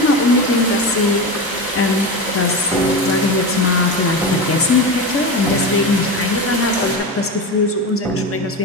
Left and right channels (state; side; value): normal; both; correlation 0.22